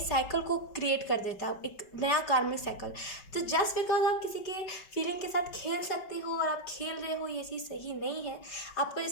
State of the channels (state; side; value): late; right; 5.2 ms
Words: को क्रिएट कर देता है, एक नया कार्मिक साइकिल। तो जस्ट बिकॉज आप किसी के फीलिंग के साथ खेल सकते हो और आप खेल रहे हो, ये चीज़ सही नहीं है। आपको